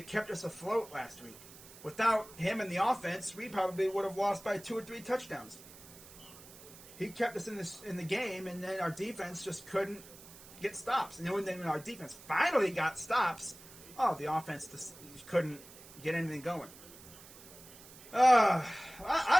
kept us afloat last week. Without him in the offense, we probably would have lost by 2 or 3 touchdowns. He kept us in the game, and then our defense just couldn't get stops. And then when our defense finally got stops, the offense just couldn't get anything going.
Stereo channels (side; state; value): right; noise; hiss, 18 dB below the sound